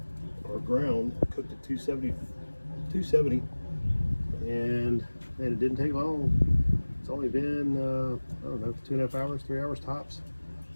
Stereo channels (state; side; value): inverted; both; correlation -1.00